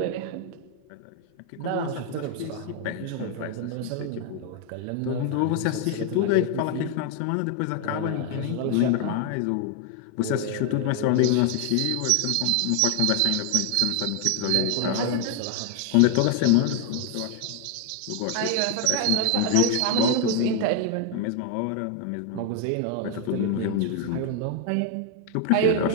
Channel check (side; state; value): both; different; correlation 0.01